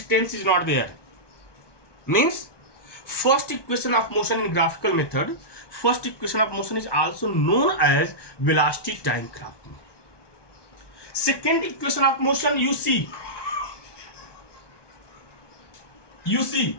is not there. Means first equation of motion in graphical method, first equation of motion is also known as velocity time graph. Second equation of motion, you see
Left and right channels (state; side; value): late; right; 1.2 ms